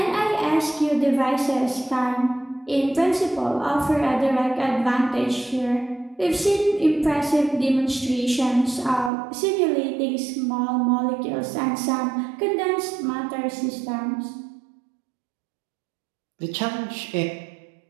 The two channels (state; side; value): drops out; left; at 9.1 s